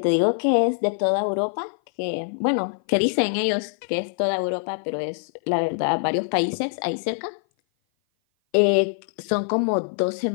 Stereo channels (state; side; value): silent; right; 57 dB below the other